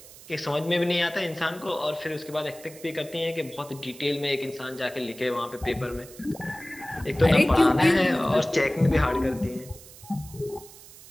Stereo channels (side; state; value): right; noise; hiss, 19 dB below the sound